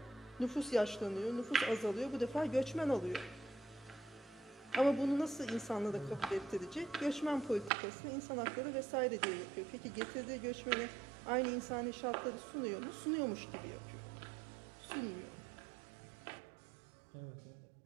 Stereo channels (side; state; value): left; drops out; at 7.7 s